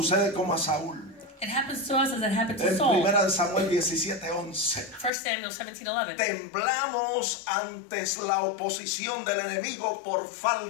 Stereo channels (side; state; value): right; drops out; at 5.1 s